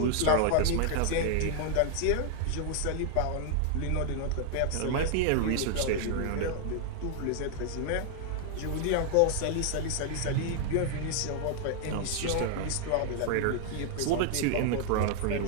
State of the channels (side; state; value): both; different; correlation 0.00